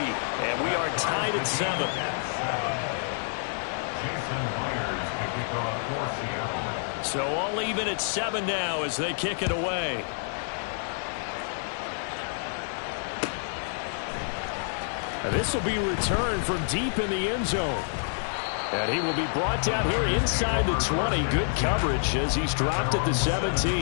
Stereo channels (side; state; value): right; silent; digital silence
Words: we are tied at 7. Jason Myers to kick off for Seattle. So all even at 7 now as they kick it away. And this will be returned from deep in the end zone. And he will be brought down here inside the 20. Good coverage as he's dropped at the